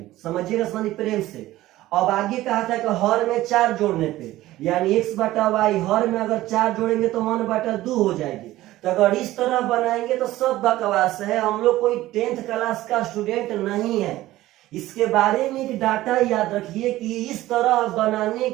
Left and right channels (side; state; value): left; quieter; 16.0 dB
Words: समझिएगा समझिए प्रेम से। अब आगे कहा था कि हर में 4 जोड़ने पे, यानी x/y हर में अगर 4 जोड़ेंगे तो 1/2 हो जाएगी। तो अगर इस तरह बनाएंगे तो सब बकवास है। हम लोग कोई 10th क्लास का स्टूडेंट नहीं है। इसके बारे में एक डाटा याद रखिए कि इस तरह बनाने